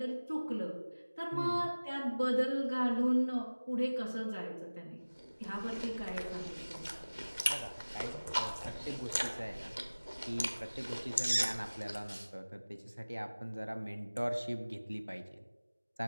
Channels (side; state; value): both; inverted; correlation -1.00